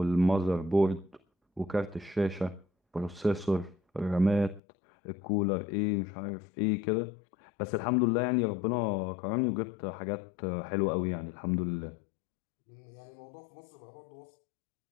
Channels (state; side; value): drops out; right; at 4.6 s